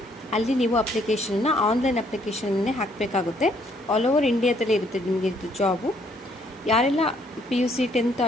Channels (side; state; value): both; normal; correlation 0.67